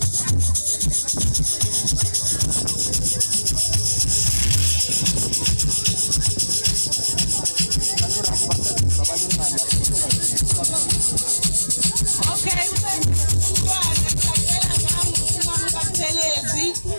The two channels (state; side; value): inverted; both; correlation -1.00